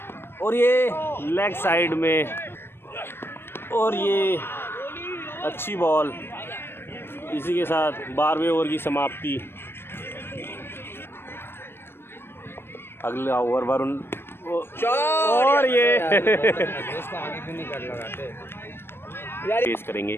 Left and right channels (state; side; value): late; right; 0.11 ms